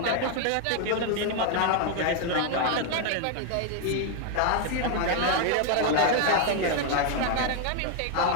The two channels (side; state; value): both; different; correlation 0.00